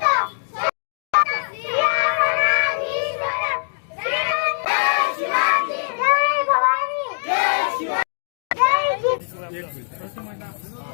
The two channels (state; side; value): silent; right; digital silence